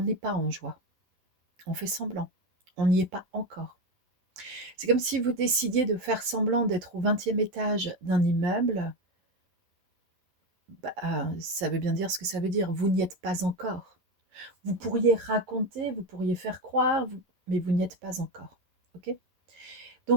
pas en joie. On fait semblant. On n'y est pas encore. C'est comme si vous décidiez de faire semblant d'être au 20e étage d'un immeuble. Ça veut bien dire ce que ça veut dire. Vous n'y êtes pas encore. Vous pourriez raconter, vous pourriez faire croire, mais vous n'y êtes pas encore. Ok?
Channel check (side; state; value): left; late; 11 ms